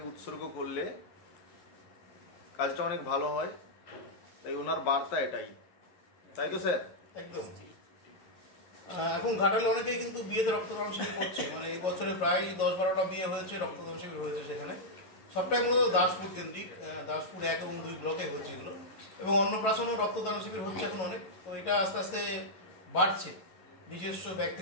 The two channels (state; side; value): late; right; 11 ms